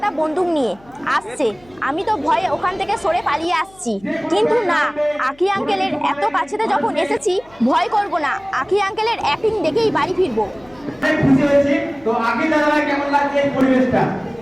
বন্দুক নিয়ে আসছে। আমি তো ভয়ে ওখান থেকে সরে পালিয়ে আসছি, কিন্তু না, আকি আঙ্কেলের এত কাছেতে যখন এসেছি ভয় করব না। আকি আঙ্কেলের অ্যাক্টিং দেখেই বাড়ি ফিরবো। খুশি হয়েছি। তো আগে দাদা কেমন লাগছে এই পরিবেশটা?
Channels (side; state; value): left; noise; hum, 27 dB below the sound